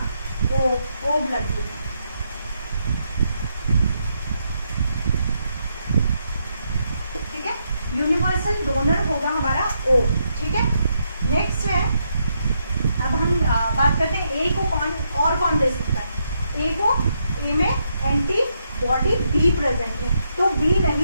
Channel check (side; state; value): both; inverted; correlation -0.79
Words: ओ ब्लड ग्रुप, ठीक है। यूनिवर्सल डोनर होगा हमारा ओ, ठीक है। नेक्स्ट है, अब हम बात करते हैं ए को कौन दे सकता है। ए को, ए में एंटीबॉडी बी प्रेजेंट है, तो बी